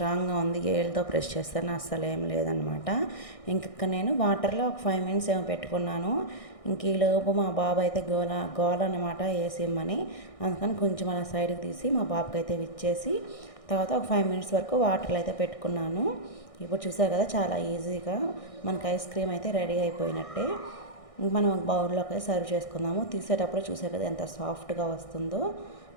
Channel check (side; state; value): right; late; 1.6 ms